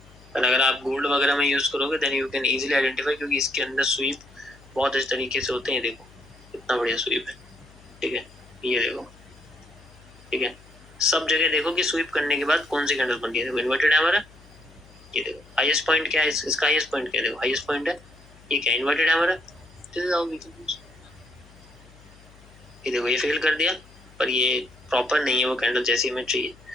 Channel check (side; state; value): left; noise; hum, 24 dB below the sound